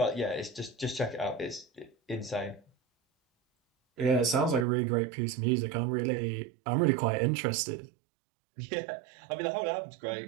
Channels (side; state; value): left; drops out; at 4.7 s